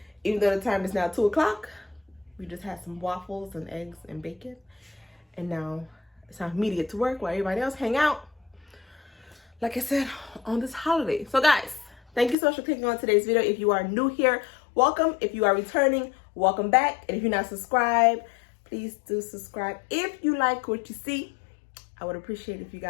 Even though the time is now 2 o'clock, we just had some waffles and eggs and bacon. And now it's time for me to get to work while everybody else hang out, like I said, on this holiday. So guys, thank you so much for clicking on today's video. If you are new here, welcome. If you are returning, welcome back. And if you're not subscribed, please do subscribe. If you like what you see, I would appreciate if you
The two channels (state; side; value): drops out; right; at 12.4 s